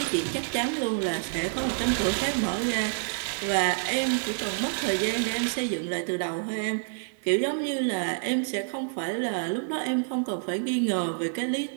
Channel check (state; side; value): silent; left; digital silence